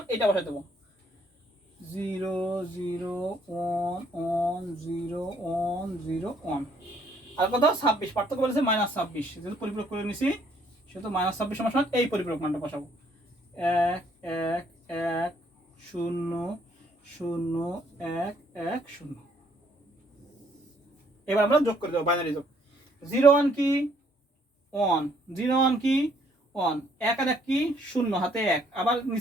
এটা বসাই দেবো, 0 0 1 1 0 1 0 1। আর কত 26, পার্থক্য বলেছে -26, যেহেতু পরিপূরক করে নিছি সেহেতু -26 সমান সমান এই পরিপূরক মানটা বসাবো, 1 1 1 0 0 1 1 0। এবার আমরা যোগ করে দেবো, বাইনারি যোগ, 0 1 কি 1, 0 1 কি 1, 1 আর 1 কি 0 হাতে 1, আবার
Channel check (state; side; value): normal; both; correlation 0.66